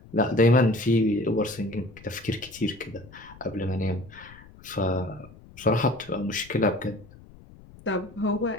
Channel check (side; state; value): left; noise; rumble, 21 dB below the sound